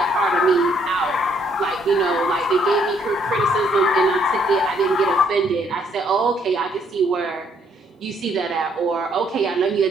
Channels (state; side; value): normal; both; correlation 0.68